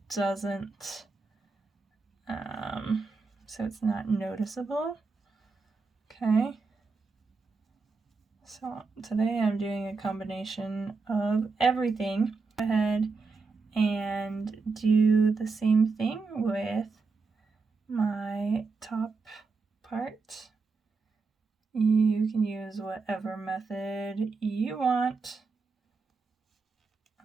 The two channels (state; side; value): quieter; left; 4.3 dB